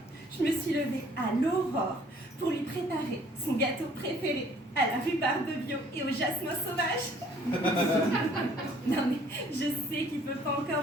je me suis levée à l'aurore pour lui préparer son gâteau préféré à la rhubarbe bio et au jasmin sauvage. Non mais, je sais qu'il ne peut pas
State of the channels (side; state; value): both; normal; correlation 0.58